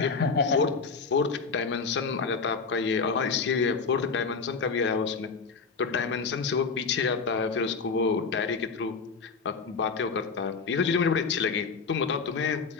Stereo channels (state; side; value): quieter; right; 5.0 dB